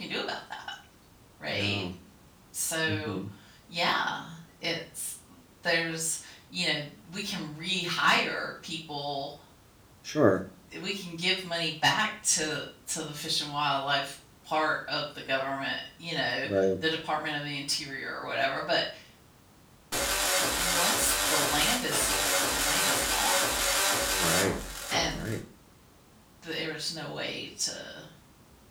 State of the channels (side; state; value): both; identical; correlation 1.00